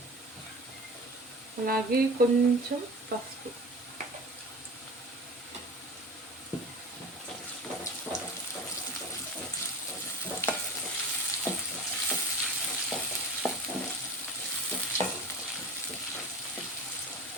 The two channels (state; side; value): normal; both; correlation 0.34